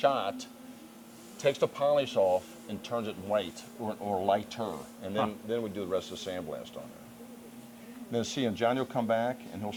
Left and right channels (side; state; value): both; identical; correlation 1.00